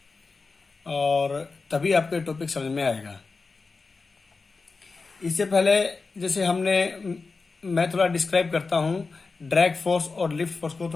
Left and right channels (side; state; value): right; quieter; 4.2 dB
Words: और तभी आपको टॉपिक समझ में आएगा। इससे पहले जैसे मैं थोड़ा डिस्क्राइब करता हूँ ड्रैग फोर्स और लिफ्ट फोर्स को,